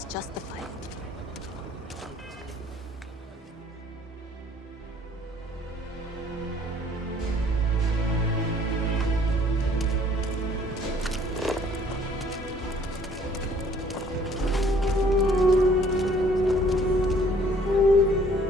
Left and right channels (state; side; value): normal; both; correlation 0.58